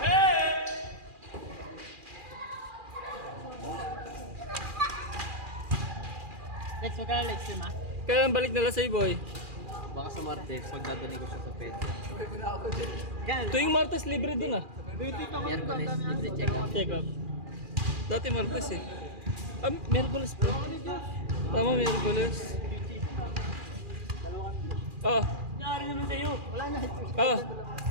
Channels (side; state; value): left; late; 2.4 ms